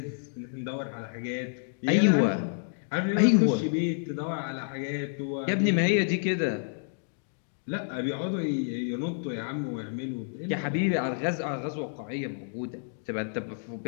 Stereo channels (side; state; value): right; silent; digital silence